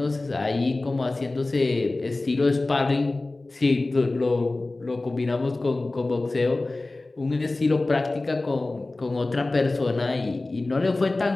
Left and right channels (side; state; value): right; quieter; 3.0 dB